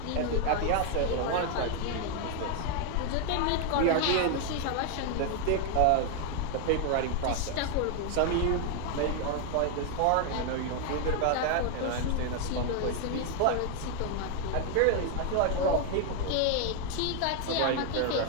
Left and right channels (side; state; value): both; different; correlation 0.01